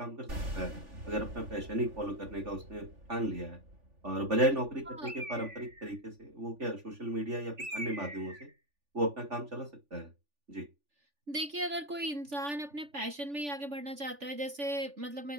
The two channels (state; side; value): late; left; 3.5 ms